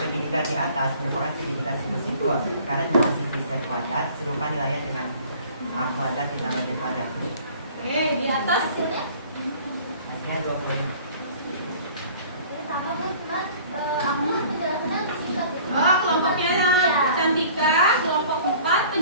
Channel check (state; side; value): inverted; both; correlation -0.49